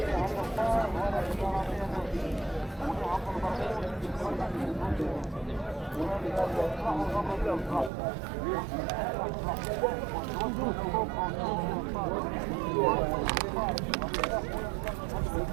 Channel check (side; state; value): left; drops out; at 7.9 s